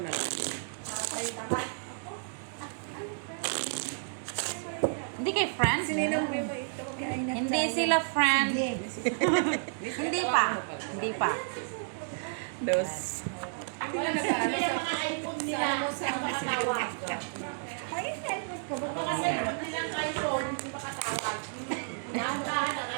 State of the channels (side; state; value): left; silent; digital silence